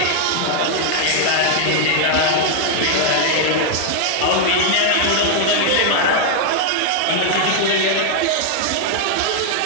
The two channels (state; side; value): different; both; correlation 0.00